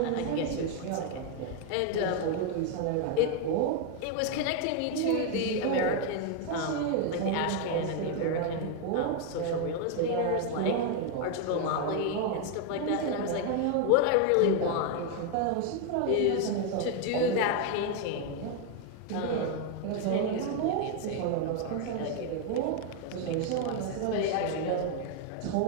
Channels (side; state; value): both; different; correlation 0.01